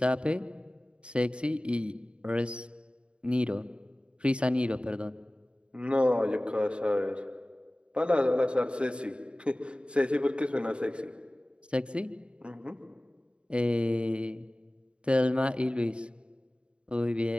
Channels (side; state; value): left; late; 0.055 ms